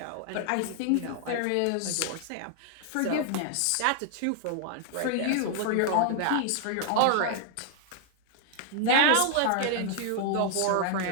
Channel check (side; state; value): both; different; correlation 0.00